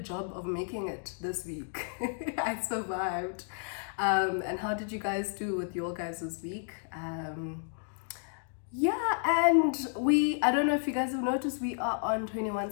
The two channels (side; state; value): right; silent; digital silence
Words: of making it this week. I survived. And how did you guys do with your guys' week? Yeah, and I don't know if you guys have noticed, we are on